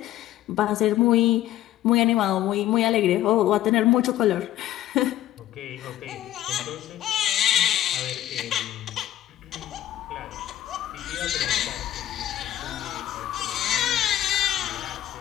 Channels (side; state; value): right; quieter; 13.4 dB